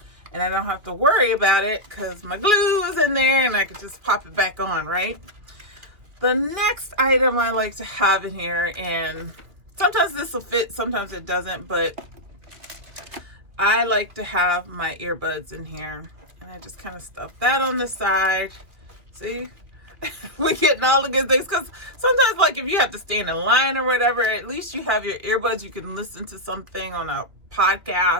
and I don't have to worry about it because my glue is in there and I can just pop it back on, right? The next item I like to have in here, and sometimes this will fit, sometimes it doesn't, but I like to have my earbuds in here, and I just kind of stuff that on the side. See? We're getting all the good things, because sometimes, like, if you have to stand in line or whatever, at least you have your earbuds. You can listen to something on a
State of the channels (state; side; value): late; left; 2.2 ms